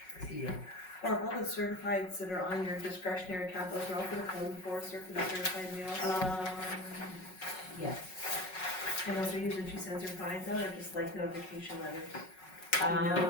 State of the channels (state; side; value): late; right; 5.4 ms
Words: Yeah. Barb, all the certifieds that are on your discretionary account, those are all for the code enforcer for the certified mail? Yeah. And those are usually she sends her fines out, or just like notification letters?